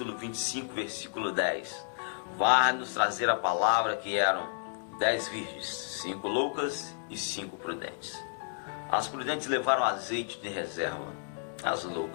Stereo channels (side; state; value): right; silent; digital silence